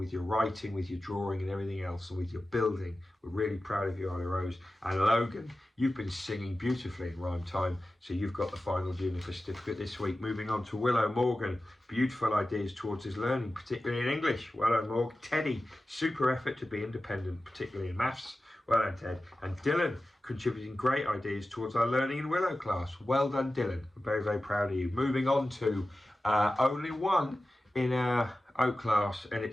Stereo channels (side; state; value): both; normal; correlation 0.94